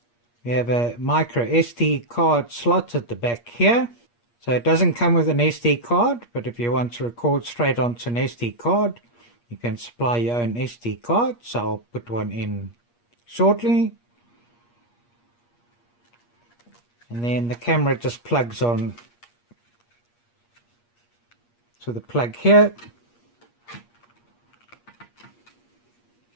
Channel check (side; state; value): right; late; 8.5 ms